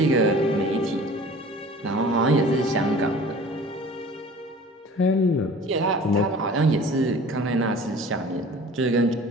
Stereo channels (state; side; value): normal; both; correlation 0.44